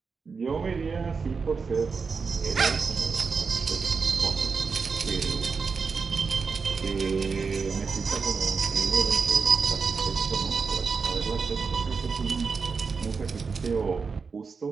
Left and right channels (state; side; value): quieter; left; 5.1 dB